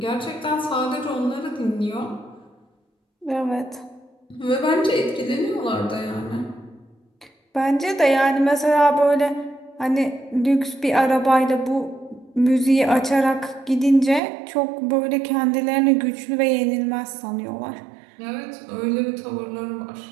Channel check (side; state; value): left; drops out; at 14.2 s